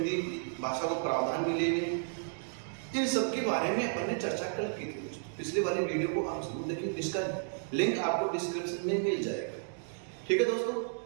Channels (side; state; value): left; silent; 56 dB below the other